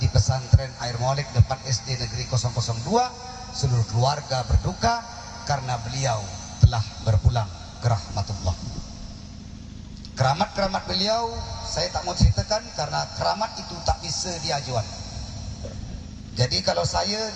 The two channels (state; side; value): identical; both; correlation 1.00